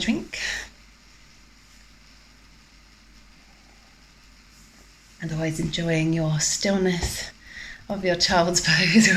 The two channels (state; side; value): identical; both; correlation 1.00